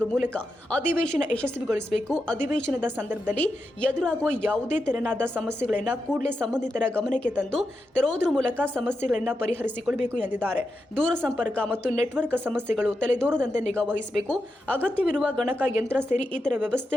ಮೂಲಕ ಅಧಿವೇಶನ ಯಶಸ್ವಿಗೊಳಿಸಬೇಕು. ಅಧಿವೇಶನದ ಸಂದರ್ಭದಲ್ಲಿ ಎದುರಾಗುವ ಯಾವುದೇ ತೆರನಾದ ಸಮಸ್ಯೆಗಳನ್ನು ಕೂಡಲೇ ಸಂಬಂಧಿತರ ಗಮನಕ್ಕೆ ತಂದು ತರುವುದರ ಮೂಲಕ ಸಮಸ್ಯೆಗಳನ್ನು ಪರಿಹರಿಸಿಕೊಳ್ಳಬೇಕು ಎಂದಿದ್ದಾರೆ. ದೂರಸಂಪರ್ಕ ಮತ್ತು ನೆಟ್ವರ್ಕ್ ಸಮಸ್ಯೆಗಳು ತಲೆದೋರದಂತೆ ನಿಗಾ ವಹಿಸಬೇಕು. ಅಗತ್ಯವಿರುವ ಗಣಕ ಯಂತ್ರ ಸೇರಿ ಇತರ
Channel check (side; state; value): both; normal; correlation 0.88